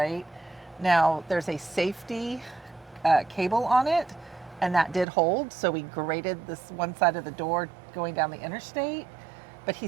Now, there's a safety cable on it, and that did hold. So we grated this one side of the door going down the interstate, but he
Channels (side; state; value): left; drops out; at 5.1 s